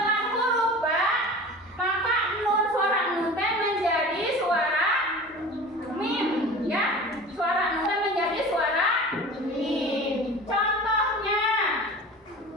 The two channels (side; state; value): both; normal; correlation 0.37